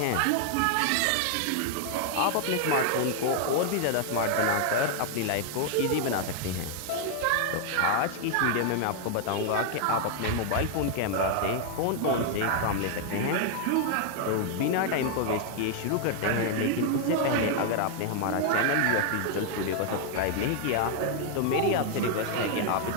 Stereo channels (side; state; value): both; different; correlation 0.00